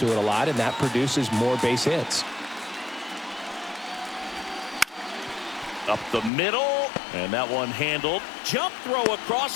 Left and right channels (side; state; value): right; drops out; at 6.3 s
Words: it a lot, and that produces more base hits. Up the middle, and that one handled. Jump throw across